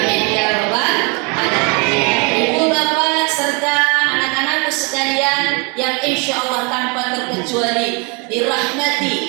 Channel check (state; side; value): quieter; left; 32.3 dB